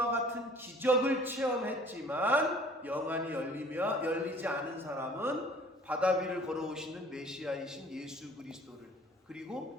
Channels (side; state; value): both; normal; correlation 0.51